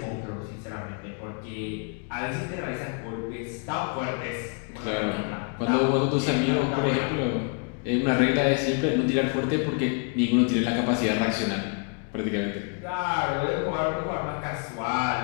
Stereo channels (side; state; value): right; quieter; 35.6 dB